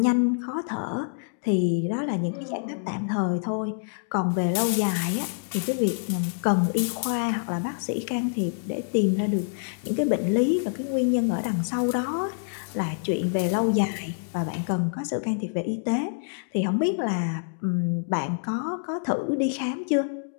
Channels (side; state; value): right; silent; digital silence